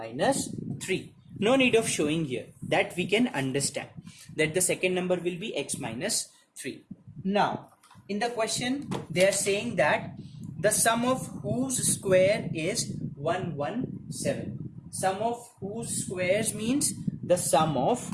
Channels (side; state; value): both; identical; correlation 1.00